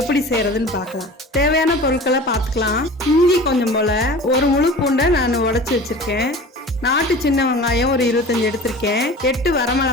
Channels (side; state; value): both; normal; correlation 0.38